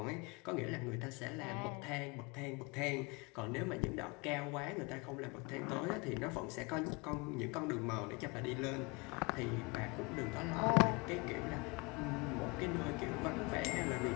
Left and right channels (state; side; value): quieter; right; 28.3 dB